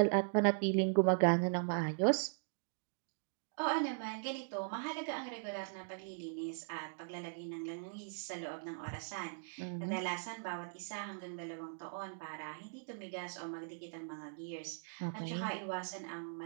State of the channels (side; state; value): left; silent; digital silence